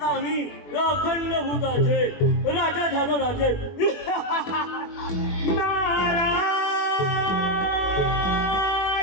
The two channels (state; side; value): late; right; 21 ms